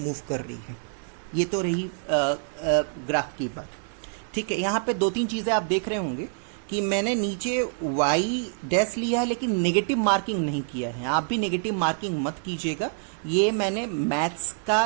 कर रही है। ये तो रही ग्राफ की बात, ठीक है। यहाँ पे 2-3 चीज़ें आप देख रहे होंगे कि मैंने नीचे y डैश लिया है, लेकिन नेगेटिव मार्किंग नहीं किया है। आप भी नेगेटिव मार्किंग मत कीजिएगा। ये मैंने मैथ्स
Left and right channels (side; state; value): left; silent; 61 dB below the other